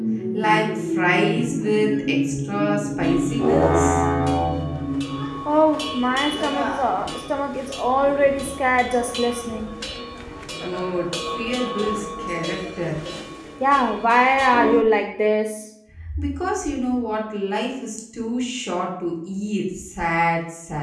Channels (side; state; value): both; identical; correlation 1.00